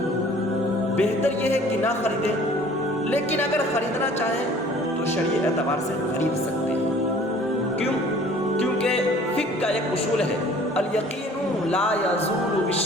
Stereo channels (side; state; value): both; normal; correlation 0.51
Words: بہتر یہ ہے کہ نہ خریدیں۔ لیکن اگر خریدنا چاہیں تو شرعی اعتبار سے خرید سکتے ہیں۔ کیوں؟ کیونکہ فقہ کا ایک اصول ہے، الیقین لا یزول